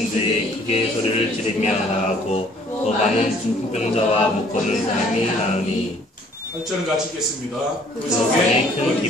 크게 소리를 지르며 나가고 또 많은 중풍병자와 못 걷는 사람이 나으니 8절은 같이 읽겠습니다. 그 속에 큰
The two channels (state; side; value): normal; both; correlation 0.58